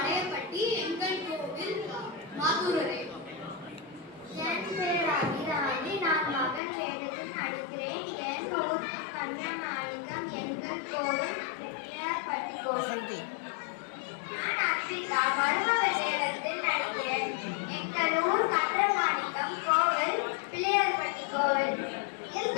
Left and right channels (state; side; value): drops out; right; at 6.6 s